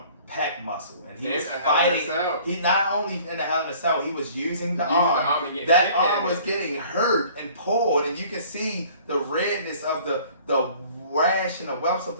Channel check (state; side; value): inverted; both; correlation -0.51